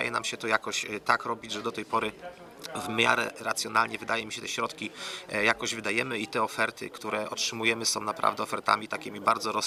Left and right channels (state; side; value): identical; both; correlation 1.00